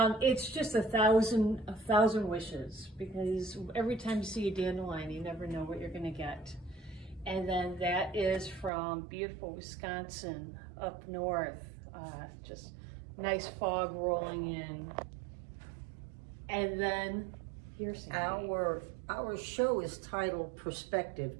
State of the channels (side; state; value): left; drops out; at 8.7 s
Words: just a thousand wishes, because every time you see a dandelion, you never know what you're going to get. And then that is from beautiful Wisconsin up north. Just nice fog rolling in. And then here's Our show is titled Perspective,